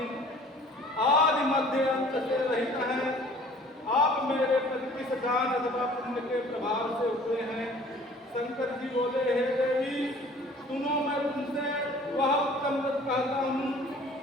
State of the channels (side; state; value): both; normal; correlation 0.51